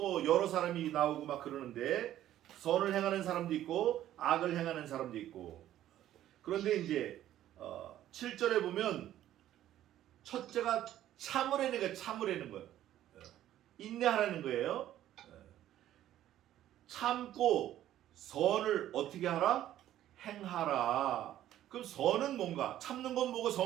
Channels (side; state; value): left; quieter; 12.6 dB